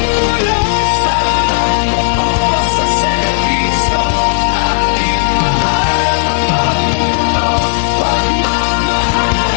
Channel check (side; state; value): right; silent; digital silence